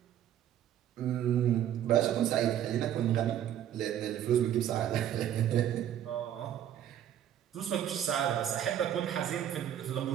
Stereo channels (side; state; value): left; quieter; 10.8 dB